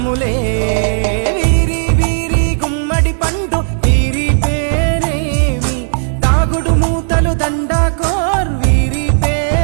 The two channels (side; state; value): left; silent; digital silence